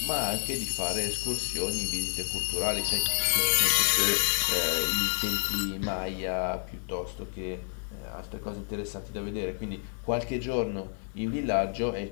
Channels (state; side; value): silent; right; 55 dB below the other